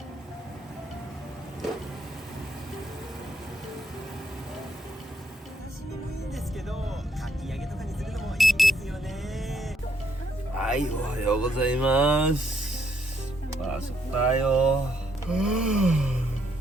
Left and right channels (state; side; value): normal; both; correlation 0.73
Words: はい、おはようございます。Pasok tayo.